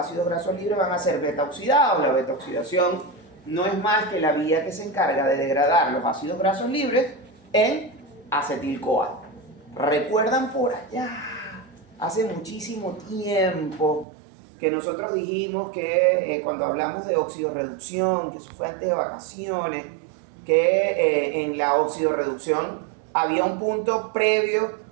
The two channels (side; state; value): left; drops out; at 14.1 s